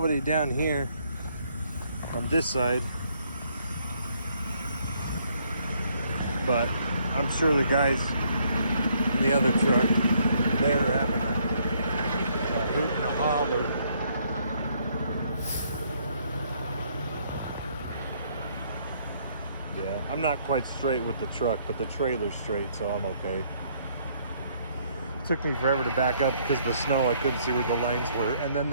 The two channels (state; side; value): inverted; both; correlation -0.68